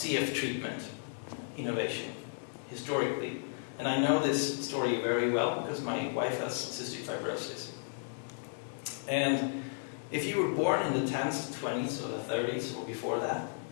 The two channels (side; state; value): right; silent; digital silence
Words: treatment innovation historically. And I know this story very well because my wife has cystic fibrosis. And if you were born in the 10s to 20s or the 30s or before that,